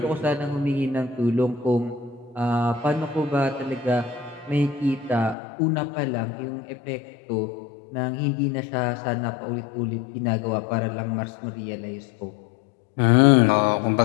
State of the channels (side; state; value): right; drops out; at 5.4 s